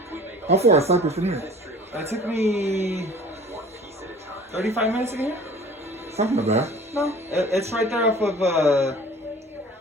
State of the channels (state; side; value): normal; both; correlation 0.46